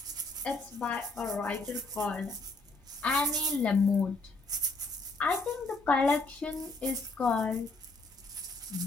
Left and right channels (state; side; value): quieter; right; 3.2 dB